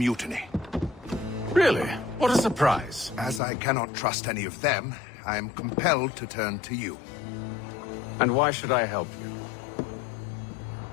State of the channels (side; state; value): right; drops out; at 3.4 s